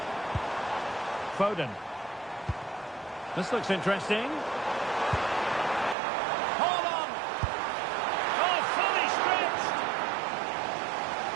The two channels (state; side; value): drops out; left; at 6.0 s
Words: Foden. This looks interesting. Hold on! Oh, fully stretched!